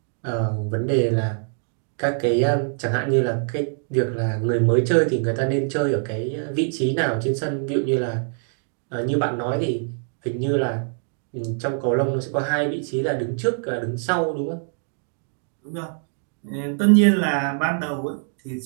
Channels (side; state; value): left; silent; digital silence